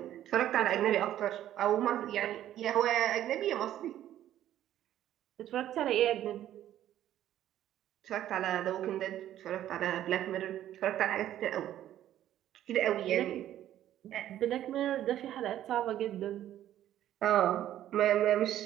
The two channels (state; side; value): quieter; left; 12.1 dB